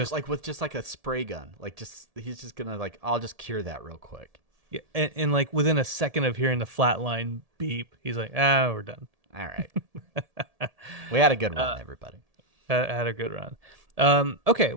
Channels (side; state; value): left; late; 1.7 ms